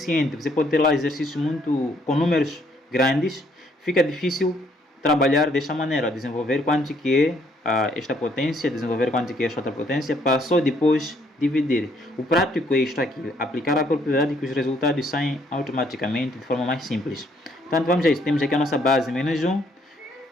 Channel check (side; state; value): both; normal; correlation 0.67